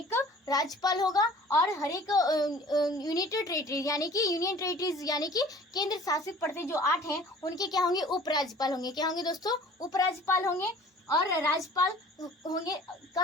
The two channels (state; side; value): normal; both; correlation 0.48